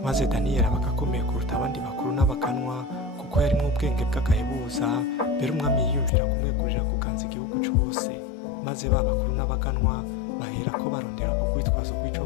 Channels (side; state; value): right; drops out; at 6.1 s